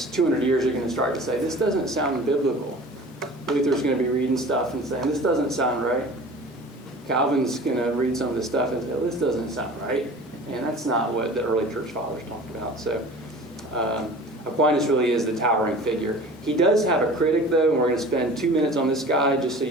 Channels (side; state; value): both; normal; correlation 0.41